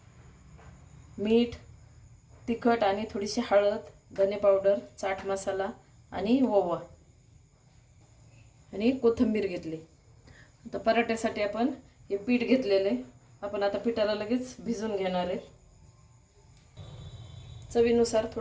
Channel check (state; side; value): identical; both; correlation 1.00